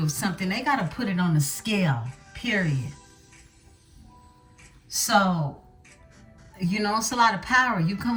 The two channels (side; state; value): both; identical; correlation 1.00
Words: of something, they got to put it on a scale, period. So, you know, it's a lot of power. You